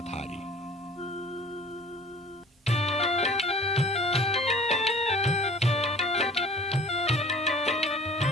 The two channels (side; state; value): both; normal; correlation 0.47